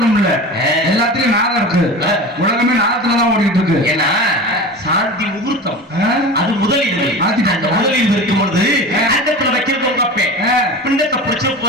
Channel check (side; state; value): both; normal; correlation 0.32